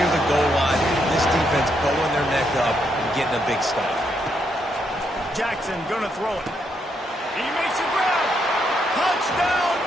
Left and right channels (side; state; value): both; normal; correlation 0.77